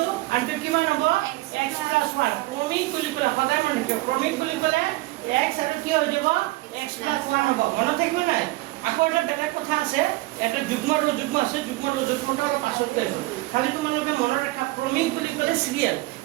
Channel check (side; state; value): left; quieter; 19.8 dB